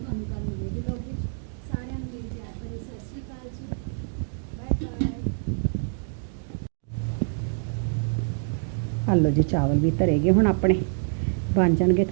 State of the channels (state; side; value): silent; left; digital silence